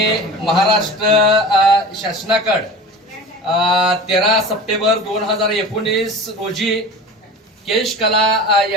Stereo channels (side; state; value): both; normal; correlation 0.35